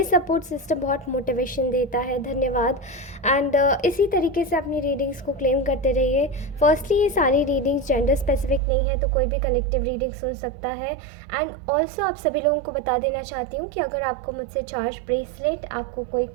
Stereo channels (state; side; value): drops out; left; at 8.6 s